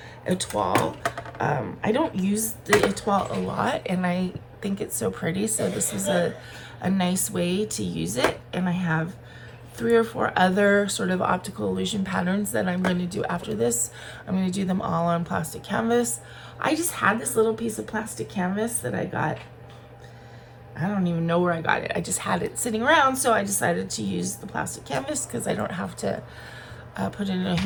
Etoile. I don't use the Etoile a lot, and I think it's so pretty, so this is a nice way to use it. And I have 3 or 4 other sort of optical illusion patterns that I'm going to do after this. I'm going to do them all on plastic canvas. I just had this little piece of plastic canvas that I got. I don't even know where I got it. I just had it sitting around, so I decided to use the plastic canvas because I don't have to put it in a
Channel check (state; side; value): identical; both; correlation 1.00